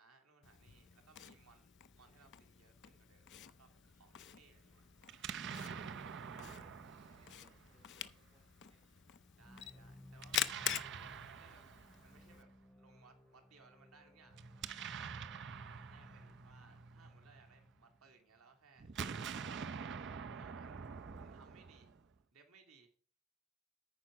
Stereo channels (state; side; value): normal; both; correlation 0.37